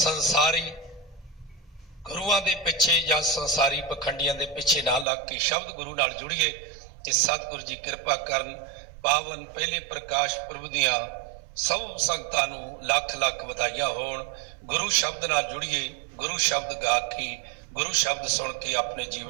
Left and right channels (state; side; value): drops out; left; at 5.1 s